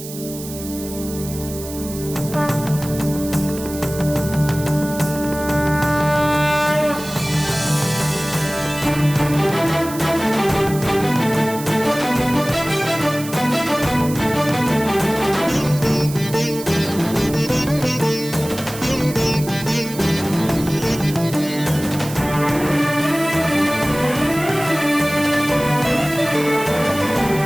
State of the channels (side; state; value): right; noise; hiss, 13 dB below the sound